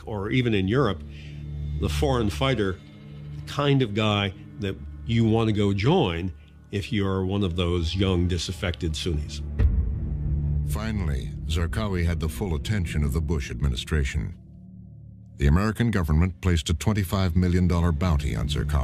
or even in Europe the foreign fighter, the kind of guy that you want to go join if you're one of those young, disaffected Sunnis. Finally, Zarqawi had the full attention of the Bush administration. The American government placed a $25 million bounty on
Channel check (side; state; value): both; identical; correlation 1.00